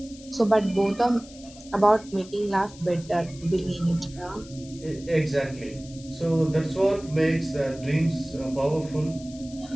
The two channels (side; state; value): left; noise; hiss, 20 dB below the sound